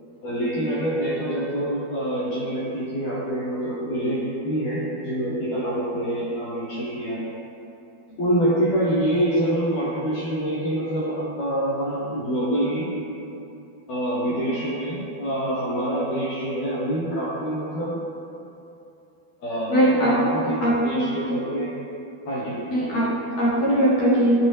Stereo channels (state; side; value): late; right; 12 ms